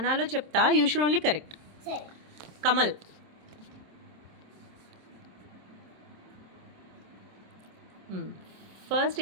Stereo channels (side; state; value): left; late; 27 ms